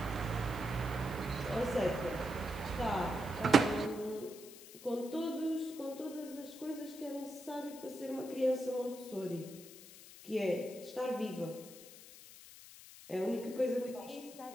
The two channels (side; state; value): left; noise; hiss, 17 dB below the sound